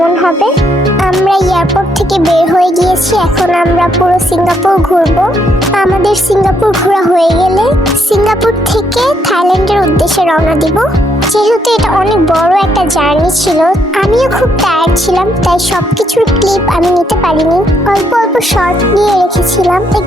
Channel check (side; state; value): both; normal; correlation 0.74